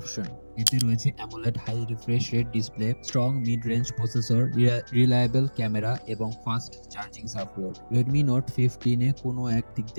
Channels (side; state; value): both; inverted; correlation -1.00